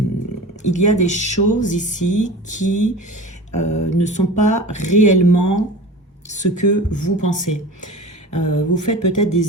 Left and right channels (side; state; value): both; normal; correlation 0.35